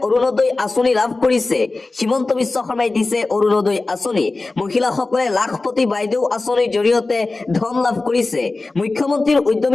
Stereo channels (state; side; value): quieter; right; 3.4 dB